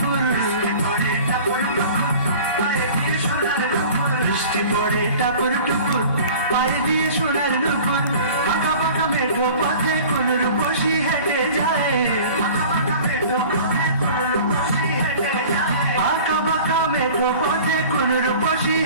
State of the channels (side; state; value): both; inverted; correlation -0.43